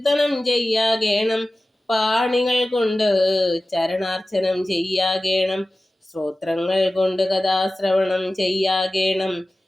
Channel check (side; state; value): both; normal; correlation 0.96